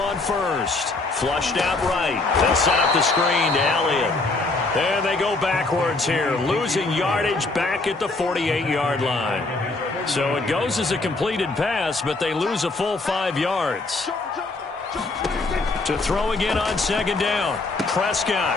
1st. Flushed out right. They'll set up the screen to Elliott. And they go backwards here, losing yardage back at the 48-yard line. So it goes as a completed pass, but they lose a full 5 yards. To throw again on second down, Prescott.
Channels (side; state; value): right; quieter; 3.4 dB